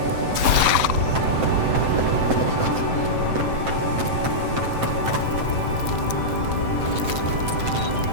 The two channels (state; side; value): late; left; 7.8 ms